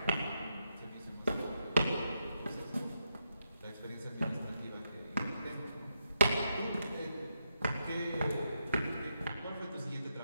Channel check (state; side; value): inverted; both; correlation -0.82